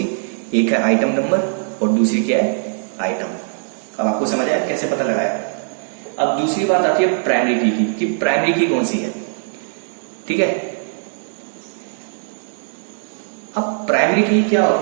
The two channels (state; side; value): silent; left; digital silence